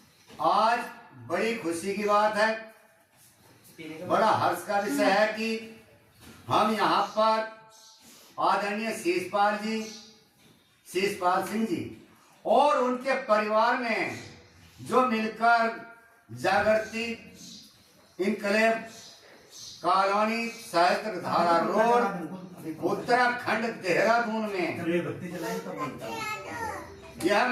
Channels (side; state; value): both; identical; correlation 1.00